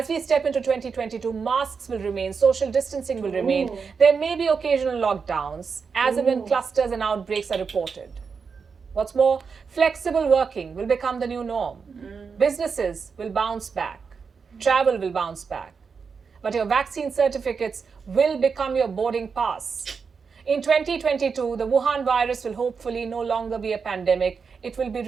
we step into 2022, masks will remain. Social distancing will remain. There may be occasional lockdowns as and when clusters and outbreaks are reported. What's more, flexible working will become the new norm. Businesses will bounce back. Travel will bounce back. But your vaccine certificates will become your boarding pass. In 2022, the Wuhan virus will hopefully no longer be a pandemic. It will be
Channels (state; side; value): quieter; left; 5.6 dB